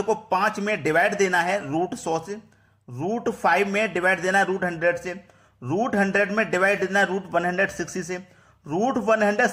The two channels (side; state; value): both; identical; correlation 1.00